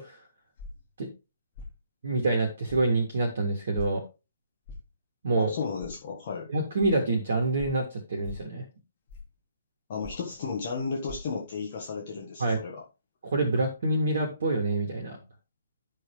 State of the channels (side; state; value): both; inverted; correlation -0.68